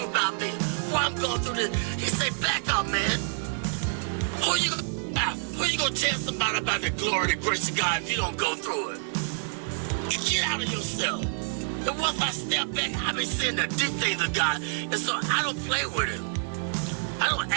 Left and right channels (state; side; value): silent; left; digital silence